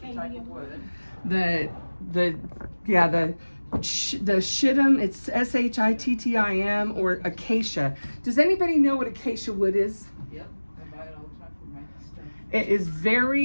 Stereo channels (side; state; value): both; inverted; correlation -1.00